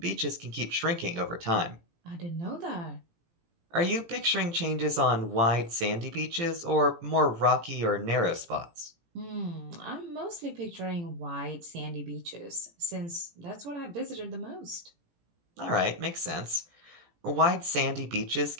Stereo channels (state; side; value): late; left; 18 ms